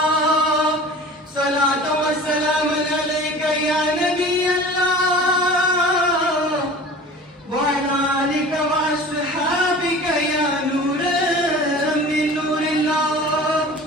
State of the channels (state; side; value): normal; both; correlation 0.40